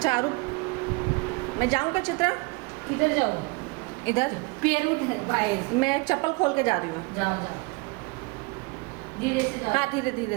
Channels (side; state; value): left; quieter; 27.5 dB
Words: आरू, मैं जाऊँ क्या चित्रा? किधर जाओ? इधर पैर उधर बाहर। मैं चप्पल खोल के जा रही हूँ। जाओ जाओ, धीरे से जाओ। हाँ धीरे